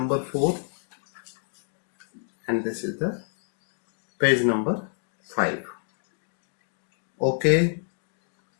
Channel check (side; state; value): right; silent; digital silence